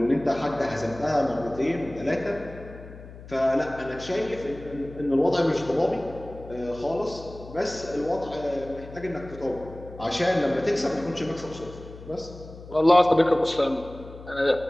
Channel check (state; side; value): noise; left; hum, 16 dB below the sound